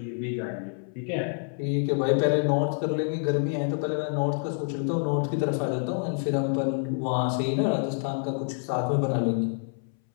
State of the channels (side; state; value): right; silent; 60 dB below the other